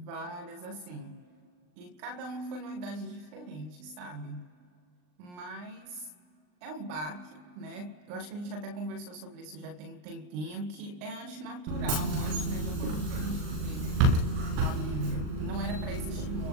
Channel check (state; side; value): late; left; 39 ms